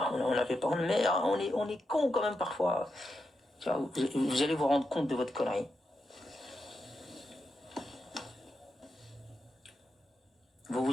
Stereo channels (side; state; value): both; normal; correlation 0.86